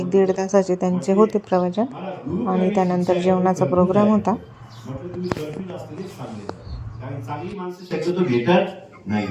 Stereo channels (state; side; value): identical; both; correlation 1.00